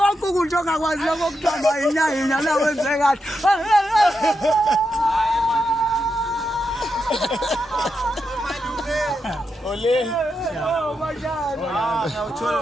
ukuthi ongakwazi lokho kuthamba inyanya la wenze kahle Ole.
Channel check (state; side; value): normal; both; correlation 0.85